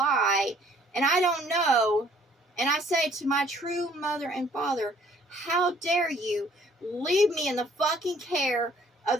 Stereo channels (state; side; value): normal; both; correlation 0.59